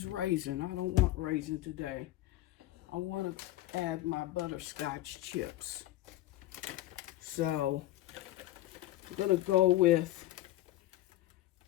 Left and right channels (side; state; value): right; quieter; 15.6 dB